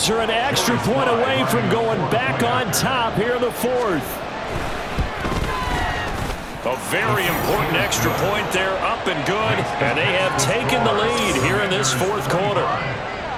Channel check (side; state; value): both; identical; correlation 1.00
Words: are an extra point away from going back on top here in the 4th. A very important extra point there, up and good, and they have taken the lead here in this 4th quarter.